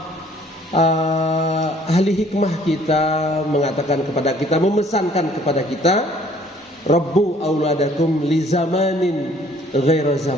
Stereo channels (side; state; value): both; normal; correlation 0.58